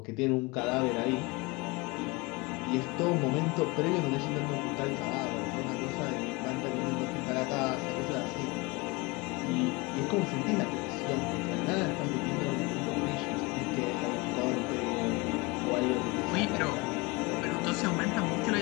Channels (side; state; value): right; quieter; 25.6 dB